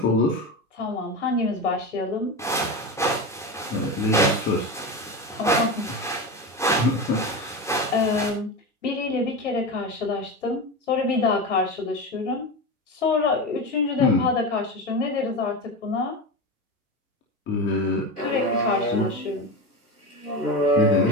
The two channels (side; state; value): both; normal; correlation 0.21